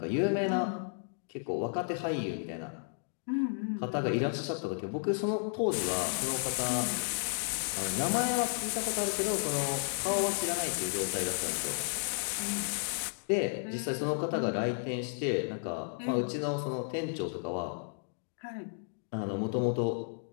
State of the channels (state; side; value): silent; right; digital silence